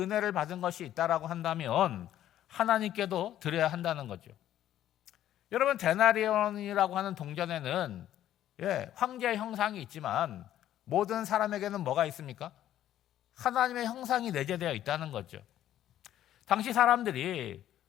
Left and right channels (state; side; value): quieter; right; 12.0 dB